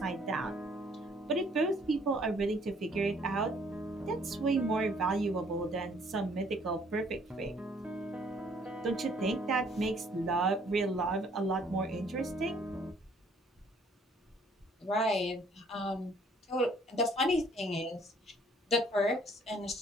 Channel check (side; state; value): both; normal; correlation 0.61